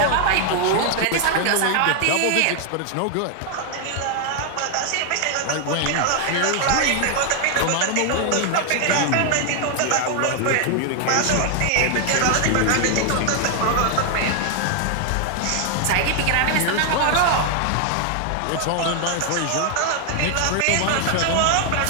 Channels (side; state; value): both; different; correlation 0.00